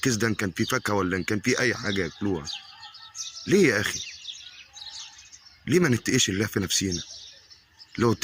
ده، ان كان فيه فاكهه ولا ان كان فيه اي حاجه ياكلوها. ليه يا اخي؟ ليه ما نتقيش الله في نفسينا؟ لو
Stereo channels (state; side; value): identical; both; correlation 1.00